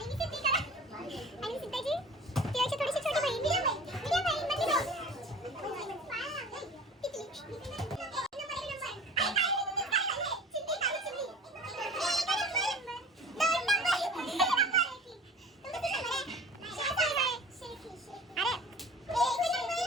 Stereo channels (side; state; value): both; normal; correlation 0.43